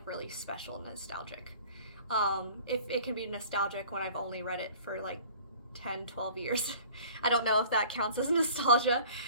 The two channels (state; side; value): inverted; both; correlation -0.47